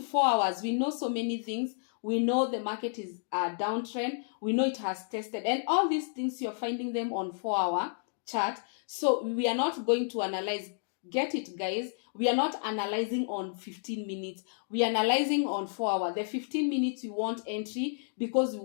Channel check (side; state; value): right; silent; digital silence